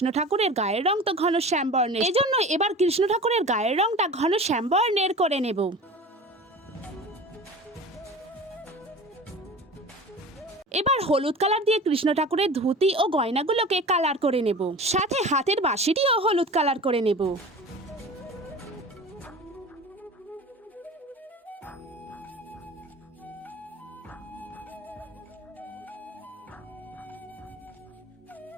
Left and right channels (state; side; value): normal; both; correlation 0.37